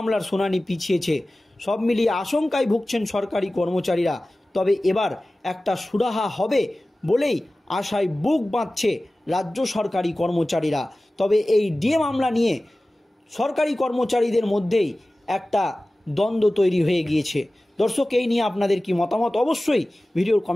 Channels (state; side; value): normal; both; correlation 0.97